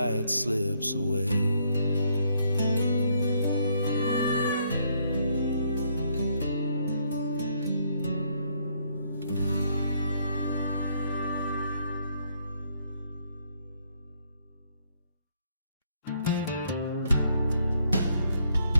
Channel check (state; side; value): inverted; both; correlation -0.71